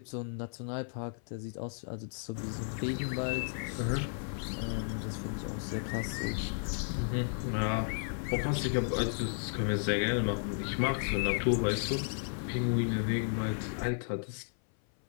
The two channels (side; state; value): right; silent; 55 dB below the other